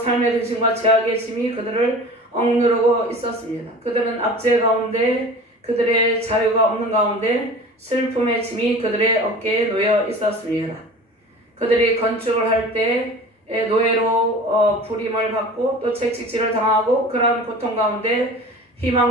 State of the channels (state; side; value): normal; both; correlation 0.39